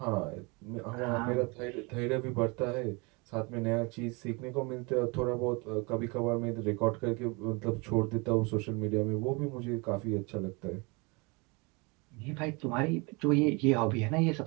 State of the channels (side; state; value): left; quieter; 28.6 dB